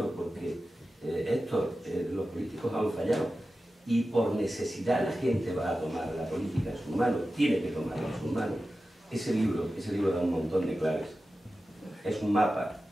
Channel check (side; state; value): both; normal; correlation 0.94